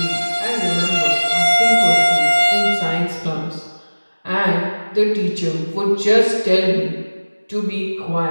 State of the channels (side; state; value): both; inverted; correlation -1.00